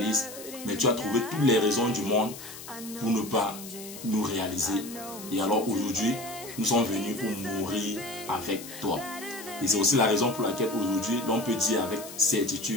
mais tu as trouvé toutes les raisons du monde pour ne pas nous réaliser. Et alors aujourd'hui, nous sommes venus pour mourir avec toi. Et c'est aussi la raison pour laquelle aujourd'hui, l'on peut dire avec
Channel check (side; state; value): left; noise; hiss, 13 dB below the sound